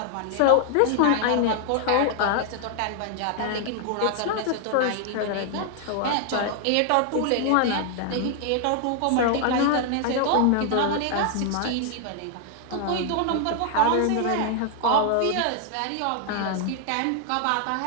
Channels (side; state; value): both; different; correlation 0.00